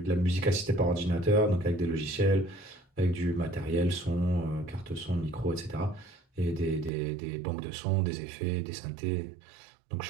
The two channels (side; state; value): left; drops out; at 6.9 s